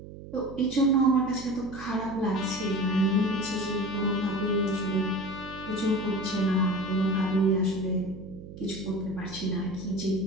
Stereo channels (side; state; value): right; noise; hum, 14 dB below the sound